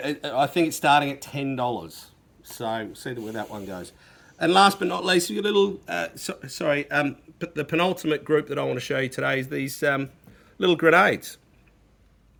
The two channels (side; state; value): both; identical; correlation 1.00